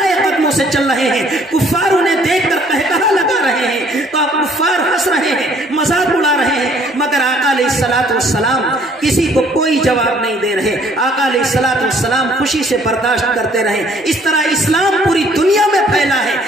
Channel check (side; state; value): both; normal; correlation 0.60